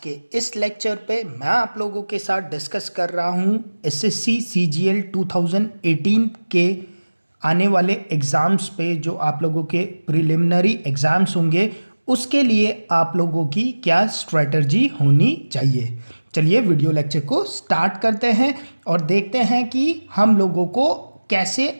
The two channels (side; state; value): both; inverted; correlation -1.00